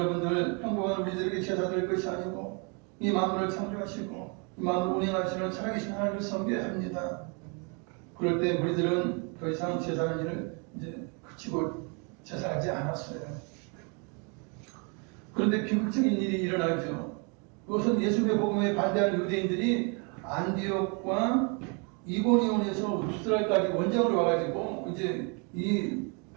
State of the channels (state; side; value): quieter; left; 34.8 dB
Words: 평범한 우리들에게 제사 드릴 것이 아니고 이 만물을 창조하시고 이 만물을 운행하시는 살아계신 하나님을 섬겨야 합니다. 그럴 때 우리들은 더 이상 제사하는 일을 이제 그치고 제사하지 않았어요. 그런데 비극적인 일이 일어나죠. 그것은 예수의 복음에 반대하는 유대인들이 안디옥과 이고니온에서 루스드라까지 원정으로 와가지고 이제 이